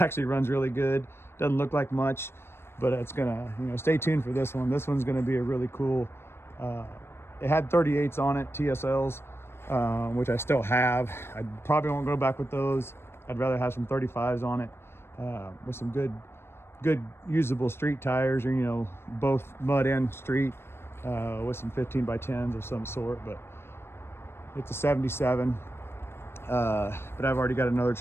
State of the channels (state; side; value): late; right; 0.12 ms